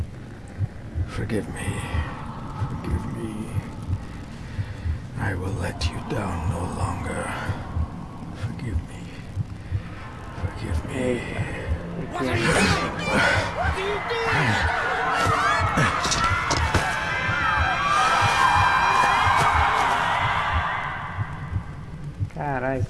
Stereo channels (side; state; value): both; identical; correlation 1.00